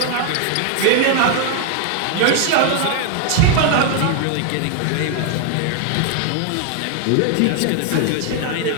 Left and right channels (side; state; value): both; different; correlation 0.00